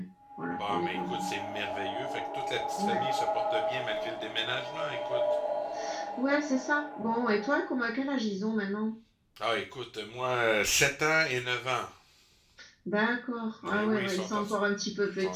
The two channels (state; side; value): identical; both; correlation 1.00